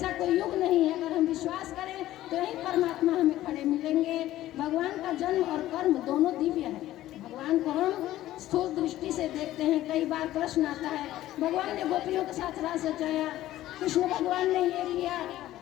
कोई युग नहीं है। अगर हम विश्वास करें तो यही परमात्मा हमें खड़े मिलेंगे। भगवान का जन्म और कर्म दोनों दिव्य है। भगवान को हम स्थूल दृष्टि से देखते हैं। कई बार प्रश्न आता है, भगवान ने गोपियों के साथ रास रचाया, कृष्ण भगवान ने ये किया।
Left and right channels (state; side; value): quieter; right; 14.5 dB